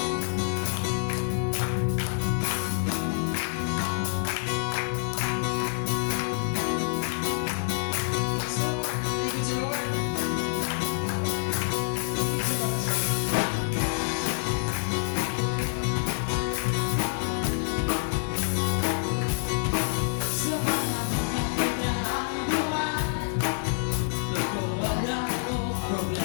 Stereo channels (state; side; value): silent; right; digital silence